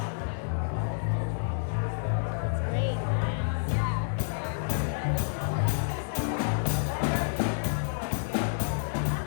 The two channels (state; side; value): silent; right; digital silence